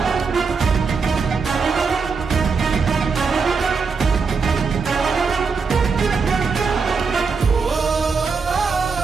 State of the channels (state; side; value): quieter; left; 5.0 dB